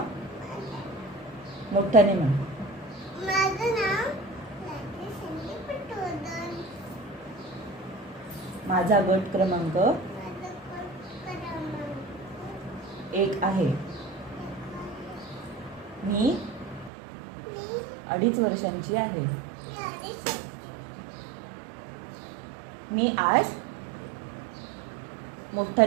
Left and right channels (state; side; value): drops out; left; at 16.9 s